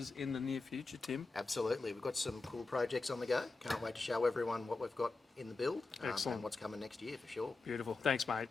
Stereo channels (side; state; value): right; quieter; 3.6 dB